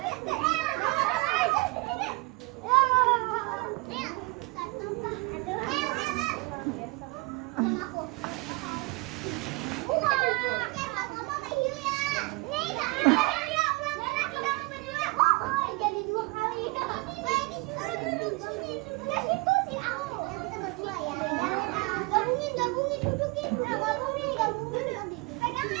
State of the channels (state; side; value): quieter; left; 25.5 dB